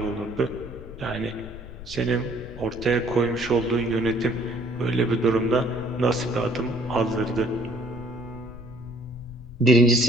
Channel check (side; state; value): left; noise; rumble, 15 dB below the sound